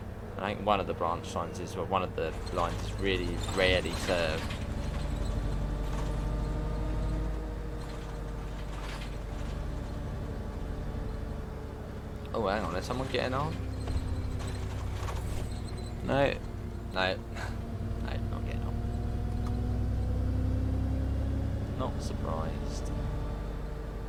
And I think one of the branch lines is, well, one of the lines is really rarely served. Oh, hang on, there's someone getting on? No, no, no, not getting on. Not surprised.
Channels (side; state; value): both; identical; correlation 1.00